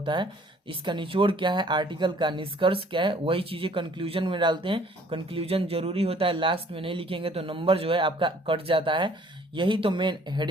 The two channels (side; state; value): both; normal; correlation 0.57